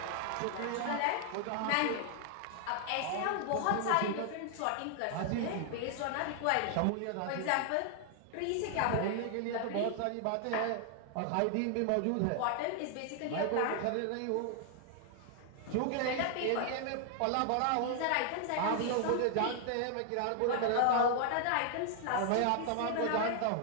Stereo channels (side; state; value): both; different; correlation 0.00